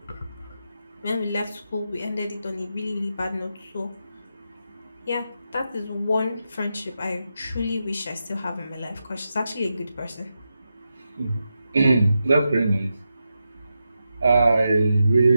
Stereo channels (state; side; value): inverted; both; correlation -0.88